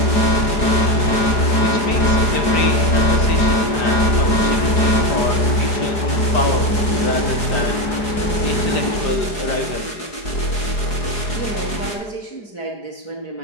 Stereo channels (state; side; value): late; right; 4.8 ms